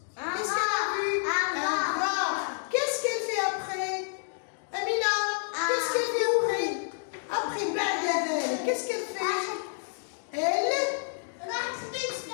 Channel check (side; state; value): right; silent; digital silence